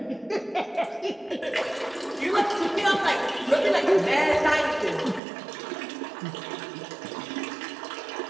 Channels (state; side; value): drops out; left; at 5.2 s